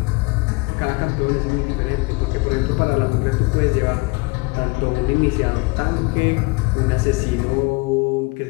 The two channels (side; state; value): right; quieter; 26.6 dB